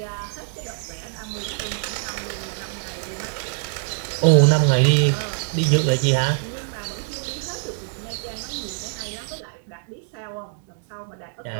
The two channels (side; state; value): left; silent; digital silence